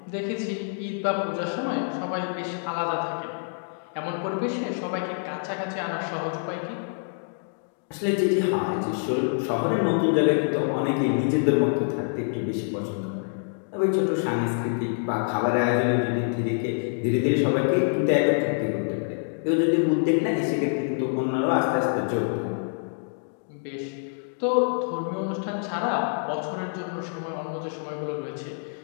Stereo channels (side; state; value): right; silent; digital silence